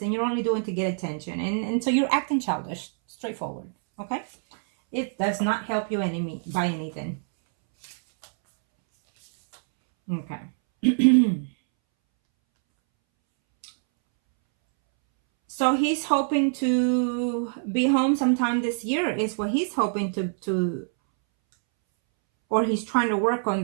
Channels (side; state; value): left; silent; 62 dB below the other